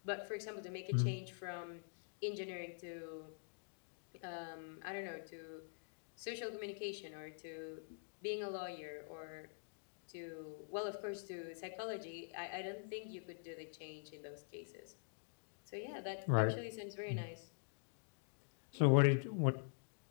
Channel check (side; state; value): right; silent; digital silence